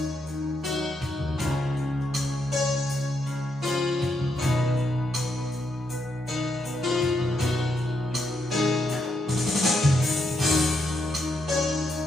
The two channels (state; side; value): normal; both; correlation 0.79